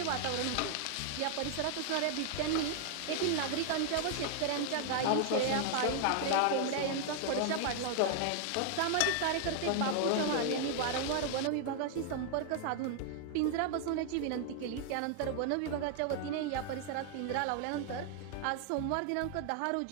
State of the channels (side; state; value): both; different; correlation 0.00